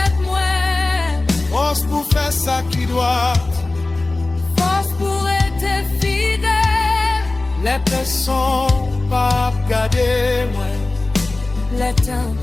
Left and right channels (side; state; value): right; quieter; 3.1 dB